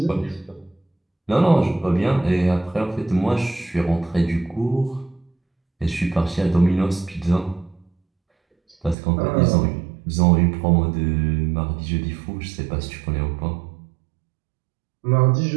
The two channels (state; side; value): drops out; left; at 9.0 s